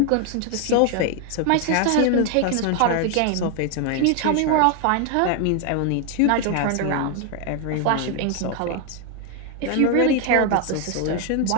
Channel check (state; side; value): different; both; correlation 0.01